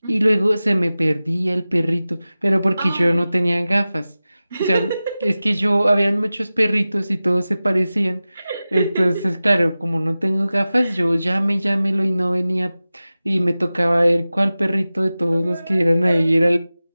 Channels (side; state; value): both; inverted; correlation -0.96